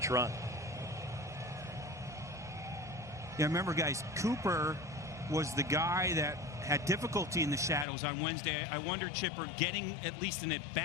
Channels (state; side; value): drops out; right; at 7.9 s